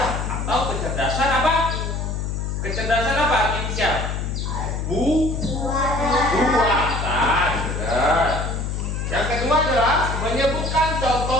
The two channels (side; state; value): left; noise; hum, 3 dB below the sound